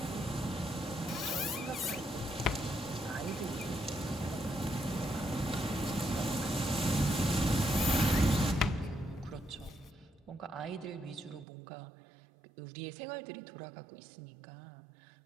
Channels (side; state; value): left; drops out; at 11.5 s